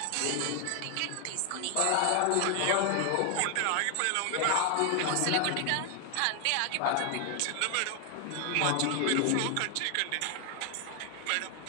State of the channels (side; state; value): both; different; correlation 0.00